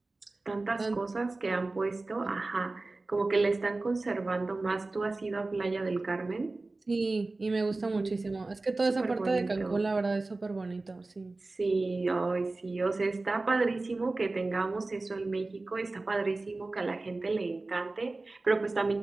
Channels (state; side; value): quieter; left; 3.3 dB